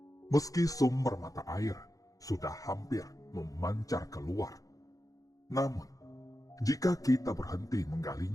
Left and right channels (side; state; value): right; late; 0.17 ms